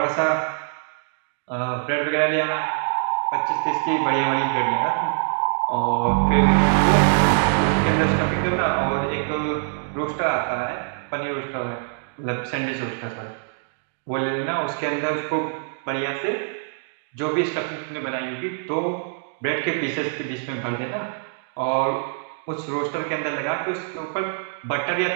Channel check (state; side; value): silent; left; digital silence